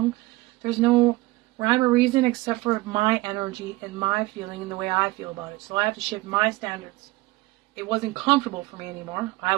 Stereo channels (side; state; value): left; quieter; 20.3 dB